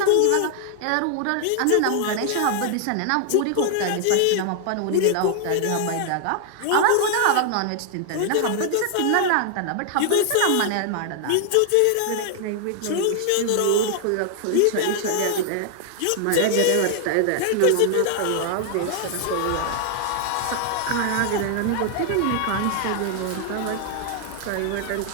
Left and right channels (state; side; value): different; both; correlation 0.00